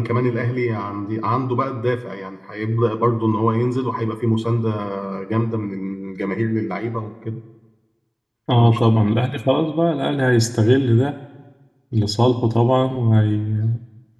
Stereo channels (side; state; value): both; identical; correlation 1.00